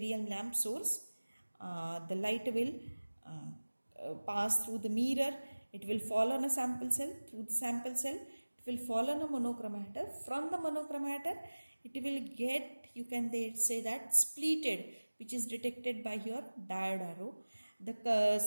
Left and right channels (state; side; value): inverted; both; correlation -1.00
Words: lamp source. The light will pass through the mirror. It will fall on a sample cell. Through the sample cell, it will fall on a monochromator. From the monochromator, it will get, you can say that, splitted, which is detected by your diode arrow. The